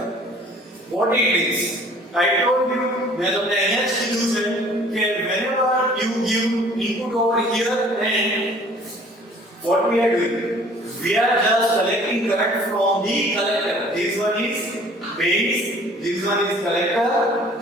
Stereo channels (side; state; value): both; normal; correlation 0.52